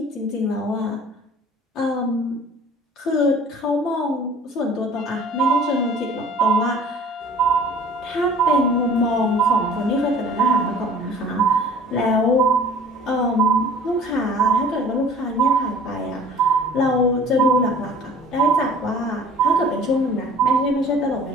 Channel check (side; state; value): both; normal; correlation 0.48